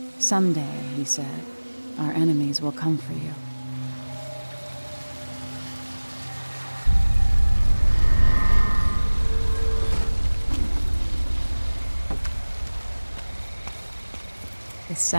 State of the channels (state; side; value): inverted; both; correlation -1.00